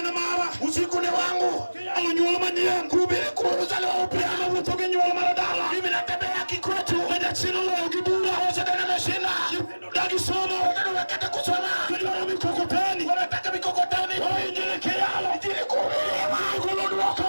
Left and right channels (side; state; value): both; inverted; correlation -1.00